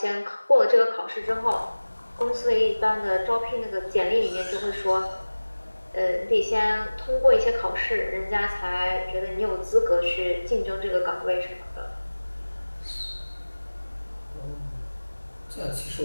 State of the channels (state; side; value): inverted; both; correlation -1.00